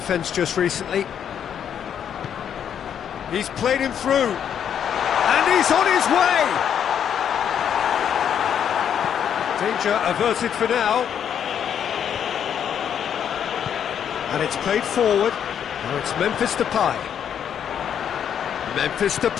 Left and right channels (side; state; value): right; quieter; 8.7 dB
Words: just recently. He's played him through, and he's on his way! Danger averted for now. And it's played forward. Now it's Memphis Depay. Memphis